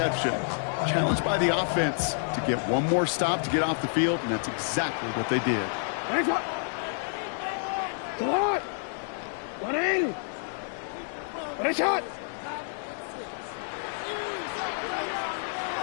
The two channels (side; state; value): right; silent; digital silence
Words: Challenged by the offense to get one more stop to get off the field, and that's exactly what they did.